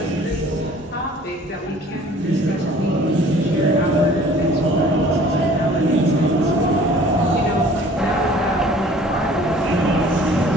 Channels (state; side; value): normal; both; correlation 0.51